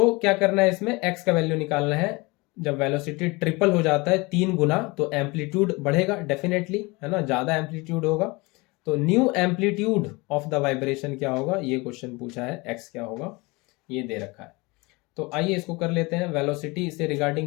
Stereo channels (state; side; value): quieter; right; 25.0 dB